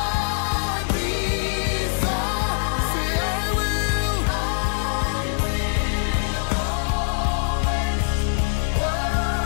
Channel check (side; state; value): right; silent; digital silence